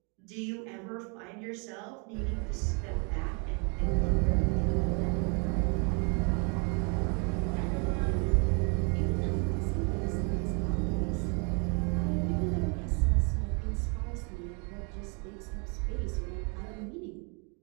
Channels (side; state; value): left; quieter; 35.0 dB